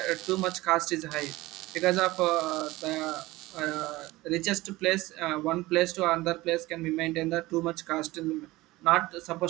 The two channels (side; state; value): left; quieter; 19.3 dB